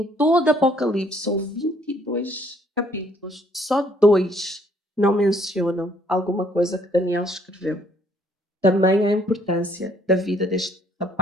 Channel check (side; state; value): both; normal; correlation 0.65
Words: todo Apocalipse são 22 capítulos, só 2 não mencionam alguma coisa que Daniel escreveu. Também a importância da vida deste